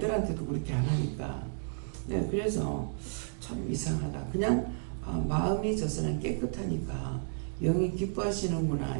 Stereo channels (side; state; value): left; silent; digital silence